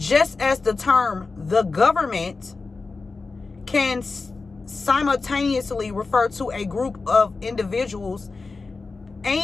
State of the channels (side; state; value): right; quieter; 4.0 dB